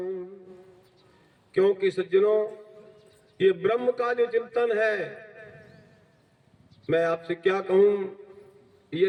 क्योंकि सज्जनों, ये ब्रह्म का जो चिंतन है, मैं आपसे क्या कहूं,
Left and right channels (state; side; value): identical; both; correlation 1.00